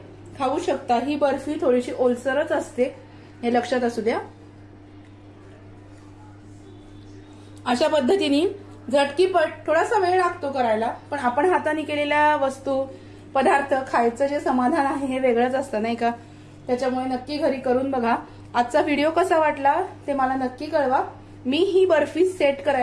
खाऊ शकता. ही बर्फी थोडीशी ओलसरच असते, हे लक्षात असू द्या. अशा पद्धतीने झटकीपट थोडासा वेळ लागतो करायला, पण आपण हाताने केलेल्या वस्तू पदार्थ खायचं जे समाधान आहे हे वेगळंच असतं नाही का. त्याच्यामुळे नक्की घरी करून बघा. आजचा व्हिडिओ कसा वाटला ते मला नक्की कळवा. मी ही बर्फी सेट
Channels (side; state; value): both; identical; correlation 1.00